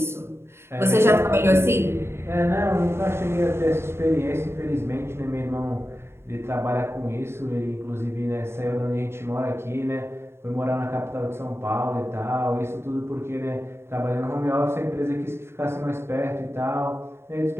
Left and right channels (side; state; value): left; late; 0.12 ms